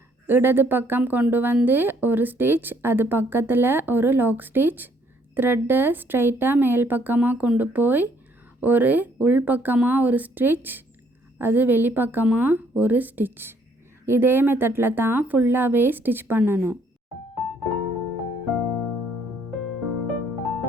இடது பக்கம் கொண்டு வந்து ஒரு ஸ்டிச், அது பக்கத்தில் ஒரு லாக் ஸ்டிச், த்ரெட்டை ஸ்ட்ரைட்டாக மேல் பக்கமாக கொண்டு போய் ஒரு உள் பக்கமாக ஒரு ஸ்டிச், அது வெளிப்பக்கமாக ஒரு ஸ்டிச். இதே மெத்தடில் தான் ஃபுல்லாகவே ஸ்டிச் பண்ணணும்.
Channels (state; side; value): normal; both; correlation 0.66